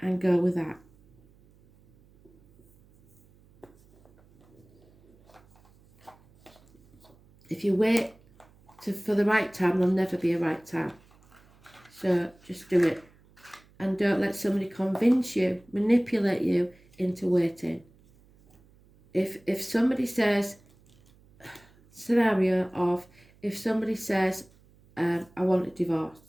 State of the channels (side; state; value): right; noise; hum, 29 dB below the sound